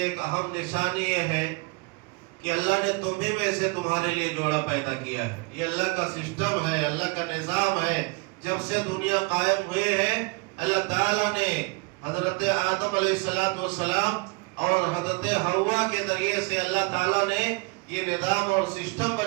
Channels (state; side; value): quieter; left; 29.1 dB